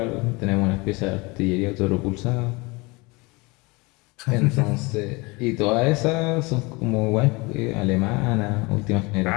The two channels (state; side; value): quieter; right; 25.7 dB